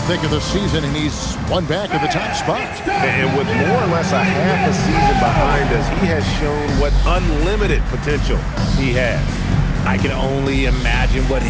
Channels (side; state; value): both; identical; correlation 1.00